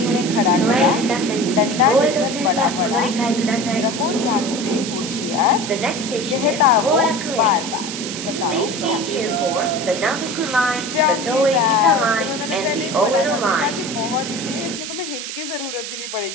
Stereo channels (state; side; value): noise; right; hiss, 7 dB below the sound